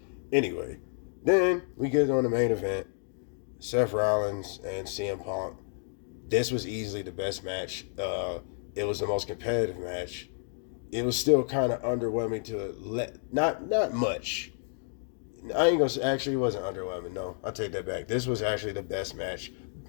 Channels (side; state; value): right; silent; 56 dB below the other